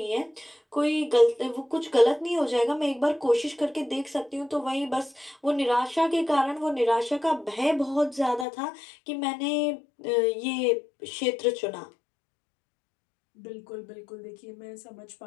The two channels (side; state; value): right; drops out; at 8.5 s